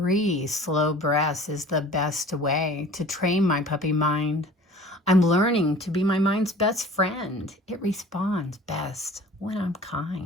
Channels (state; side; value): normal; both; correlation 0.45